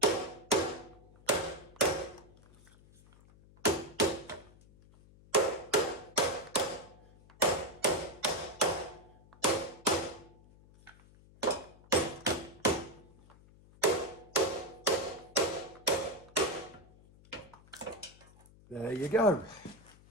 There you go.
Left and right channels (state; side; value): noise; left; hum, 24 dB below the sound